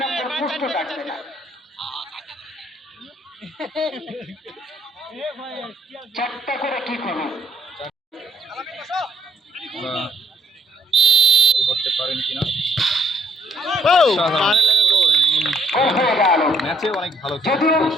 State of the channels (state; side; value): normal; both; correlation 0.69